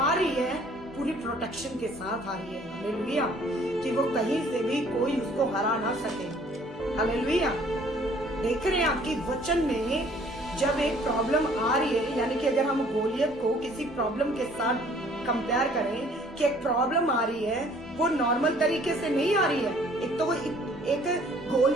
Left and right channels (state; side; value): normal; both; correlation 0.57